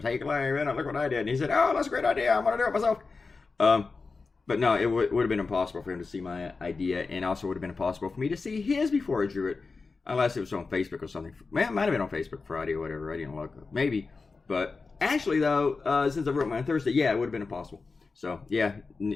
Clay, look what I did. And he said, "Oh, that's a great idea. I'm gonna do it myself." But no, it would have been impossible for him to see my idea, and also would have been impossible for me to see his before I drew it, unless it was on Facebook or something. Man, it might have been on Facebook Friday or whatever. I didn't look. Maybe, but actually though, since I wrote mine on Thursday, yeah, it would have been impossible. So yeah,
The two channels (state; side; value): quieter; right; 4.3 dB